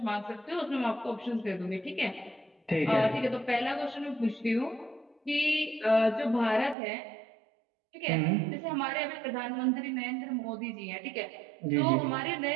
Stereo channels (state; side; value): drops out; left; at 6.8 s